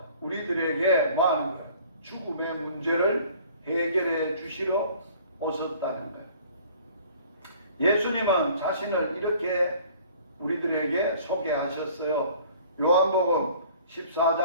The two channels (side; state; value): both; inverted; correlation -0.51